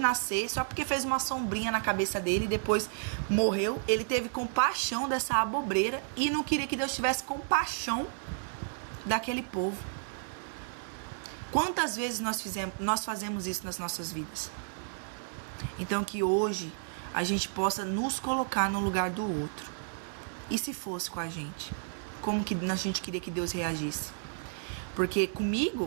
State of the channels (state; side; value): silent; left; digital silence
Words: só porque fez uma sombrinha na cabeça dele e depois morreu. Ele teve compaixão dessa abobreira e não queria que Deus tivesse compaixão daquele povo. Quantas vezes nós fazemos isso nas nossas vidas? Então que hoje a gente possa nos colocar no lugar do outro. E se fosse com a gente? Como que a gente queria que Deus reagisse? Porque